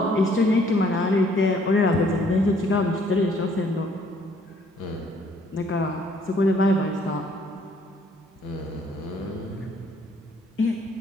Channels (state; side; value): normal; both; correlation 0.63